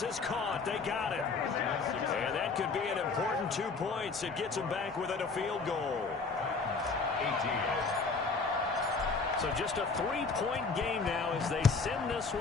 is caught. They got it. And that could be an important 2 points. It gets them back within a field goal. 18. So just a 3-point game now as they send this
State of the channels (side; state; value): right; quieter; 4.4 dB